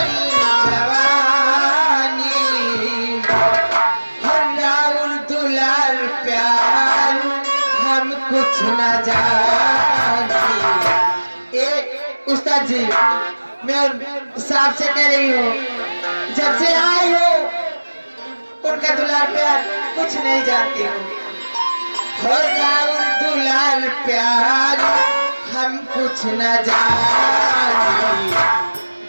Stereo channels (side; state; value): both; inverted; correlation -1.00